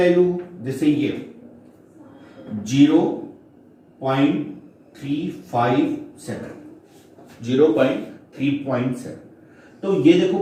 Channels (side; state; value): both; identical; correlation 1.00